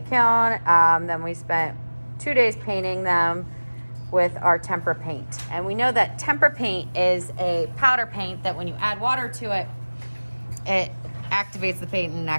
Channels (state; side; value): inverted; both; correlation -1.00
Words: Then we spent 2 days painting them with our tempera paint. And we know that tempera paint is a powder paint that when you add water to it, it activates the paint and